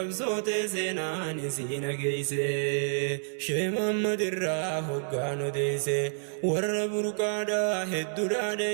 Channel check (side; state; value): left; silent; 58 dB below the other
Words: seenaan isii nageeyse shee Muhammad irraa hoggaan odeeyse warra burqaadhaa hedduudhaa